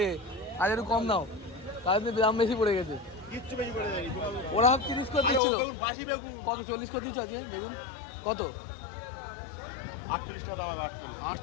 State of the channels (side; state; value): right; drops out; at 5.4 s